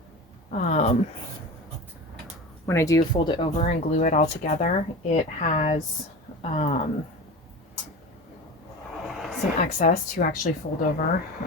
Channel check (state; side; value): normal; both; correlation 0.30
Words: when I do fold it over and glue it all together, it has some excess to actually fold over.